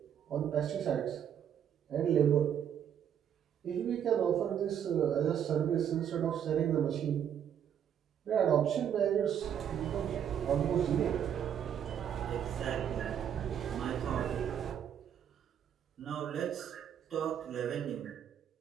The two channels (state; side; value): quieter; left; 9.1 dB